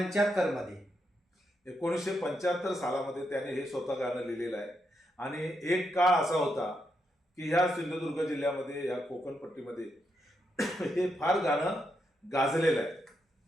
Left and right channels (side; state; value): both; normal; correlation 0.82